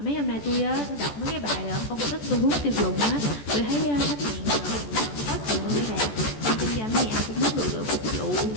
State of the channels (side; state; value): right; late; 14 ms